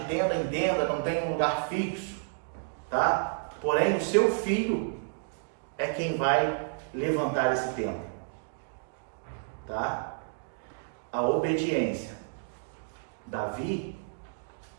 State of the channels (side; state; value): left; silent; digital silence